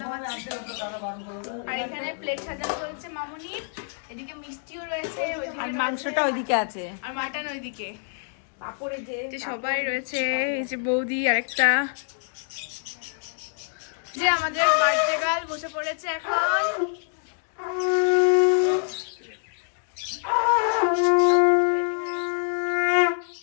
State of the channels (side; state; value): right; silent; digital silence